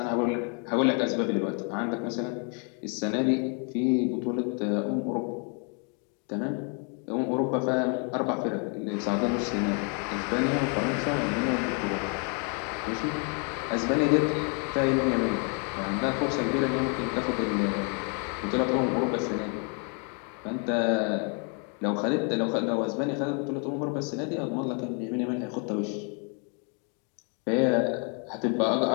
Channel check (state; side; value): quieter; right; 38.3 dB